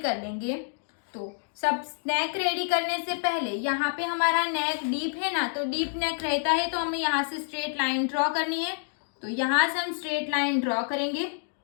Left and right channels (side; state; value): right; silent; digital silence